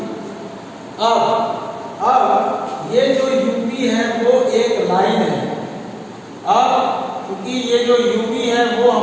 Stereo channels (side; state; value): both; identical; correlation 1.00